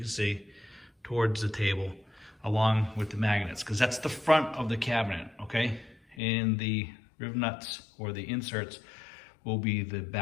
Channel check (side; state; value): right; drops out; at 6.2 s